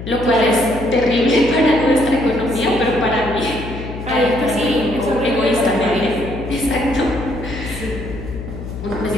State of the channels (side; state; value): left; noise; hum, 9 dB below the sound